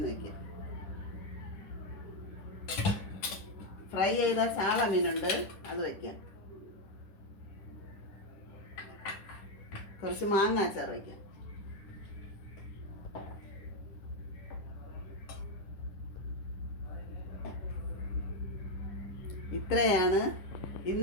വയ്ക്കാം. ഫ്രൈ ചെയ്ത ചാള മീനുണ്ട്, അത് വയ്ക്കാം. കുറച്ച് മാങ്ങ അച്ചാർ വയ്ക്കാം. ഇത്രയാണ്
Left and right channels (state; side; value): late; right; 10 ms